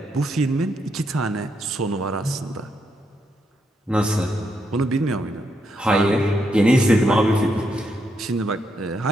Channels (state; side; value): normal; both; correlation 0.79